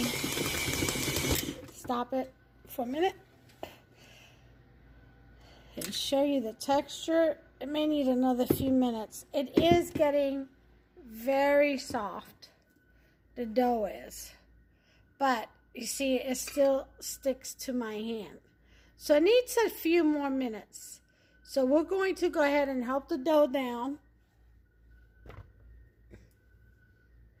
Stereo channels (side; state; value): both; identical; correlation 1.00